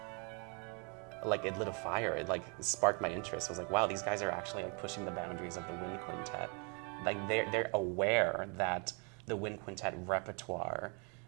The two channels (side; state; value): left; quieter; 35.6 dB